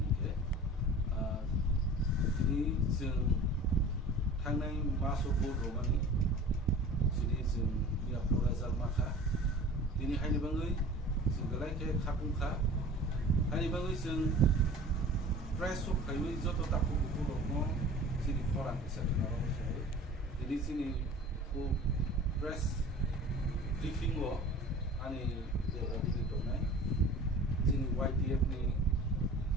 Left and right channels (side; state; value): both; normal; correlation 0.42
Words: ke ini sing thangnai maso bo romani sini sing ya Razal Makha ini haini bangai sing galai ke khapungkha haini bangai sing press of kaiwi joto tapu buku romo sini koran bisa kenal so ini sini ku press briefing wo ani de radi to nai sini YTF ni